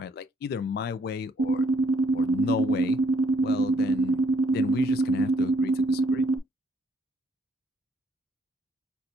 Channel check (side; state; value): both; normal; correlation 0.68